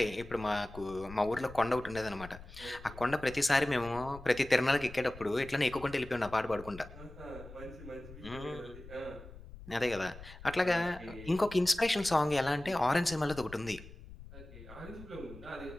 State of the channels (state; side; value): noise; left; rumble, 16 dB below the sound